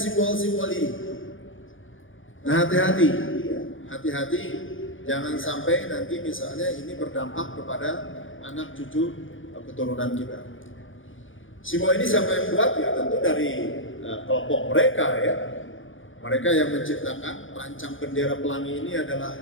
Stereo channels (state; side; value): late; right; 0.58 ms